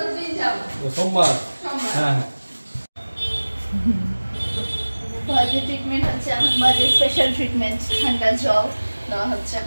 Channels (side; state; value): both; inverted; correlation -1.00